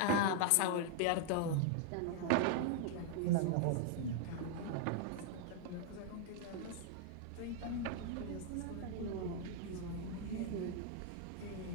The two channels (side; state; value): both; different; correlation -0.01